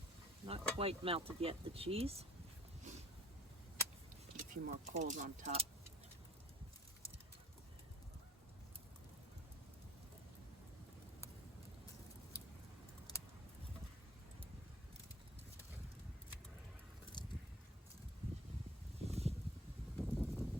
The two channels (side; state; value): both; normal; correlation 0.52